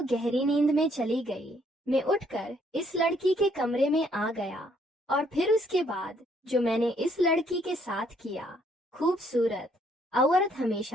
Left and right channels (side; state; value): both; normal; correlation 0.67